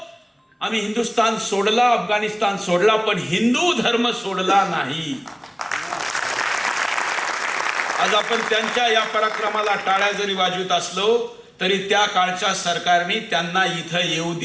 आम्ही हिंदुस्थान सोडला, अफगाणिस्तान सोडला, पण हिंदू धर्म सोडला नाही. आज आपण त्यांच्या या पराक्रमाला टाळ्या जरी वाजवत असलो तरी त्या काळच्या सरकारने त्यांना इथं येऊ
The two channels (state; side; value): identical; both; correlation 1.00